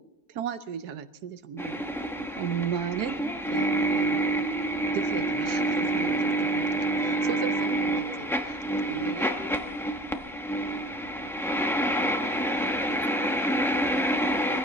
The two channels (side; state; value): both; normal; correlation 0.42